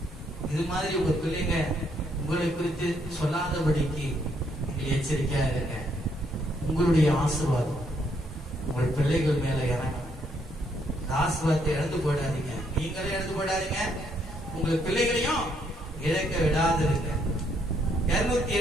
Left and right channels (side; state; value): both; normal; correlation 0.72